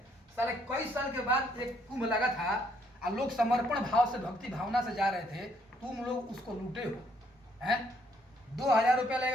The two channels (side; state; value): both; normal; correlation 0.69